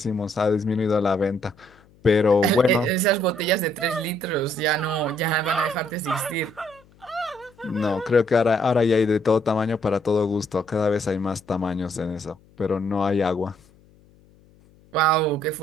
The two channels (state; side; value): noise; left; hum, 29 dB below the sound